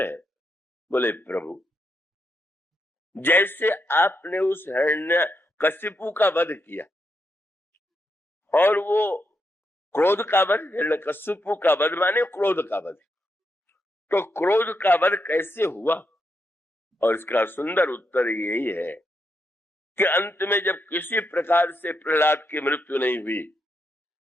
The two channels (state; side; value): normal; both; correlation 0.82